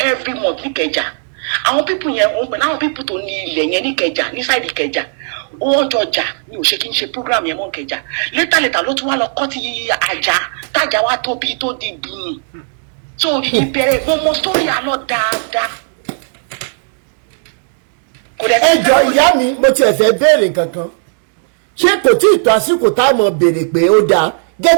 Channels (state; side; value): silent; left; digital silence